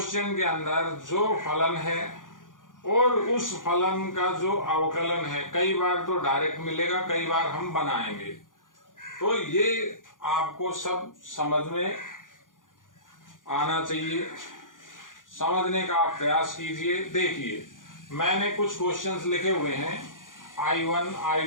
के अंदर जो फलन है और उस फलन का जो अवकलन है, कई बार तो डायरेक्ट मिलेगा, कई बार हम बनाएंगे, तो ये आपको सब समझ में आना चाहिए। समझने का आप प्रयास कीजिए। देखिए, मैंने कुछ क्वेश्चंस लिखे हुए हैं, I1,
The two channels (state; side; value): late; right; 0.89 ms